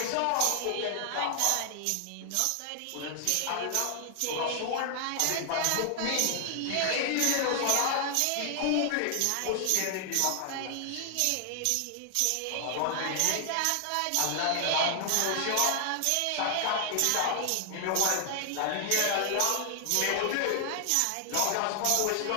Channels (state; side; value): different; both; correlation 0.00